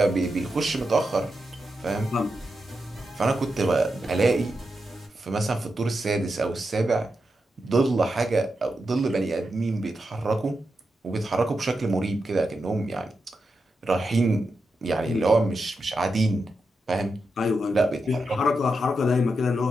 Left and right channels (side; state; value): both; normal; correlation 0.87